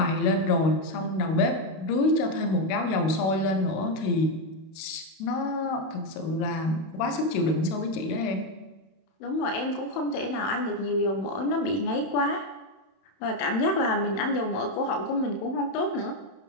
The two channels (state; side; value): late; right; 31 ms